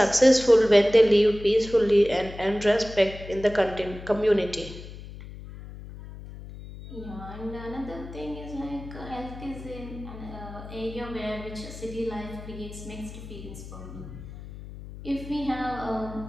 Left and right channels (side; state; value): left; noise; hum, 13 dB below the sound